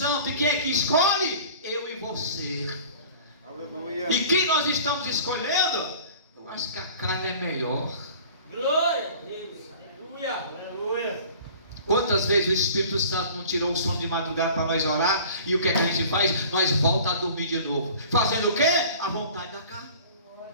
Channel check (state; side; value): inverted; both; correlation -0.45